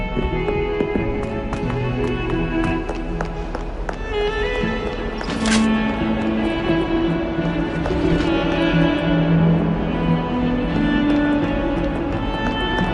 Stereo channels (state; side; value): identical; both; correlation 1.00